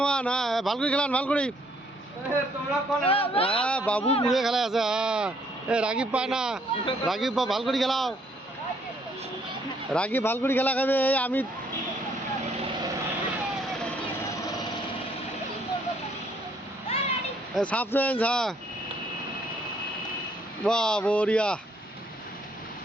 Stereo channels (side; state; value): both; normal; correlation 0.67